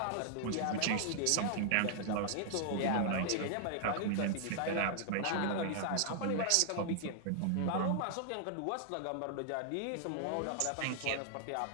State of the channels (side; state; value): both; different; correlation 0.00